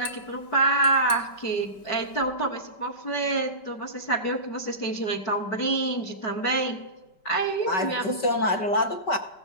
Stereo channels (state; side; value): late; right; 5.2 ms